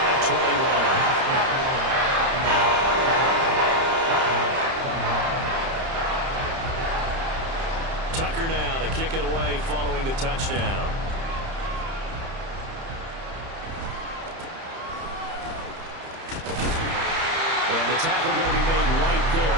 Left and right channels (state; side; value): late; left; 30 ms